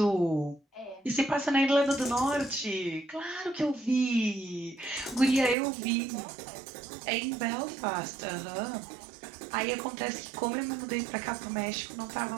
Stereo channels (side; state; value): left; drops out; at 5.6 s